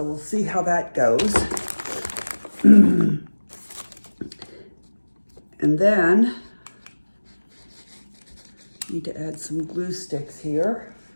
we'll see how that goes. And then need to add some glue sticks here.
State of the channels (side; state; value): both; inverted; correlation -1.00